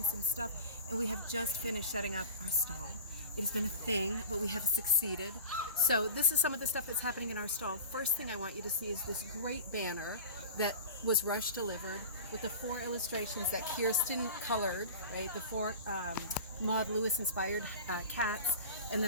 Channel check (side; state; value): both; inverted; correlation -0.35